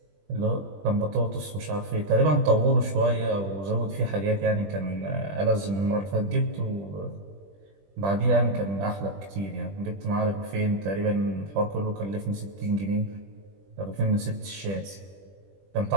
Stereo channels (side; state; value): left; late; 20 ms